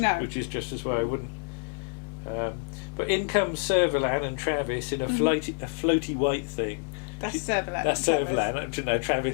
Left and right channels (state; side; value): silent; right; 60 dB below the other